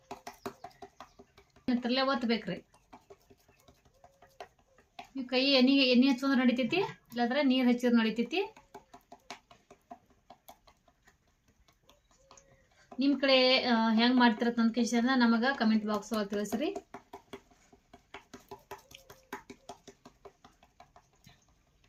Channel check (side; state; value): both; identical; correlation 1.00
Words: ತರಲೆ ಒತ್ತಬೇಕ್ರಿ. ನೀವು ಕೈ ಎಣ್ಣೆ ಹಚ್ಚೋದ್ರೆ ನಡಿತೈತಿ, ಇಲ್ಲಾಂದ್ರೆ ನೀರು ಹಚ್ಚಿದ್ರೆ ನಡಿತೈತಿ. ನಿಮ್ಮ ಕಡೆ ಹೆಂಗೆ ಮಾಡ್ತಿರತ್ತ ನನ್ನ ಕ್ವೆಶ್ಚನ್ನ ನಮಗೆ ಕಮೆಂಟ್ ಬಾಕ್ಸ್ ಒಳಗೆ ತಿಳಿಸ್ರಿ.